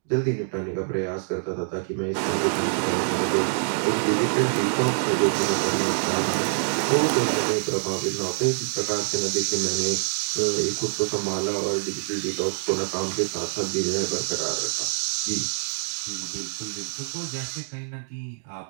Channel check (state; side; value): silent; left; digital silence